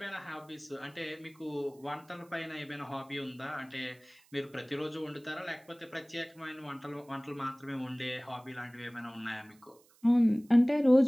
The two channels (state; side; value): noise; right; hiss, 30 dB below the sound